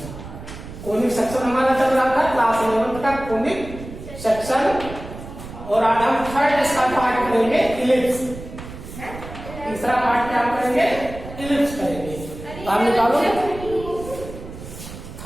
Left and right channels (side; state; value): right; noise; rumble, 13 dB below the sound